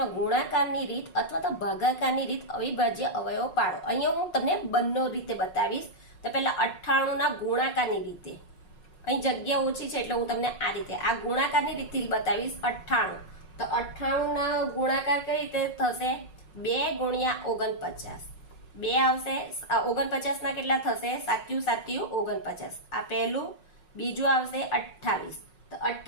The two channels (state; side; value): late; right; 5.5 ms